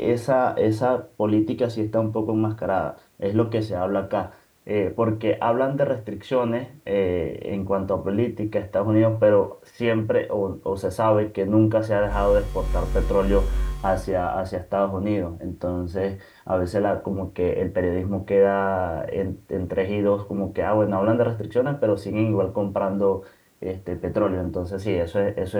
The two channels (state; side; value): identical; both; correlation 1.00